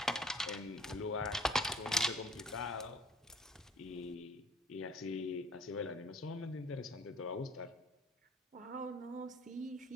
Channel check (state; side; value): normal; both; correlation 0.53